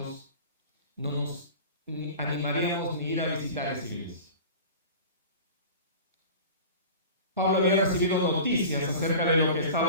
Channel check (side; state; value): both; inverted; correlation -0.37